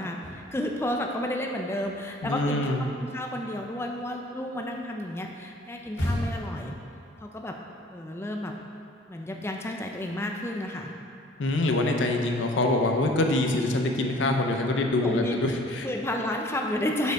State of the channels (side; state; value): both; normal; correlation 0.52